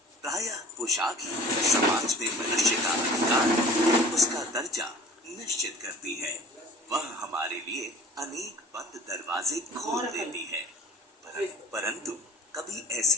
प्रायः पोशाक ही समाज में मनुष्य का अधिकार, उसका दर्जा निश्चित करती है। वह हमारे लिए अनेक बंद दरवाजे खोल देती है। परंतु कभी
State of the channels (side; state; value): both; normal; correlation 0.42